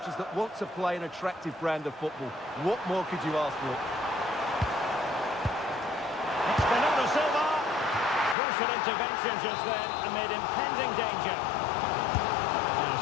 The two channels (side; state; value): right; drops out; at 8.3 s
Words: that want to play an attractive brand of football. What more could you ask for? Crucial intervention just then amid impending danger. Now